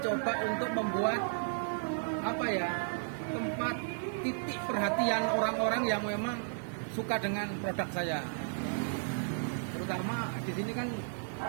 untuk membuat apa ya, tempat titik perhatian orang-orang yang memang suka dengan produk saya. Terutama di sini kan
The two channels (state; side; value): silent; left; digital silence